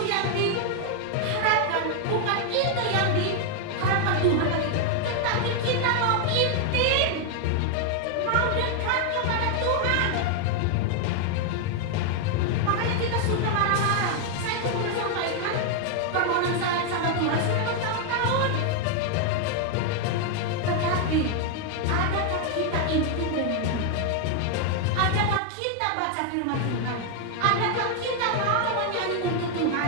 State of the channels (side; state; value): both; different; correlation 0.00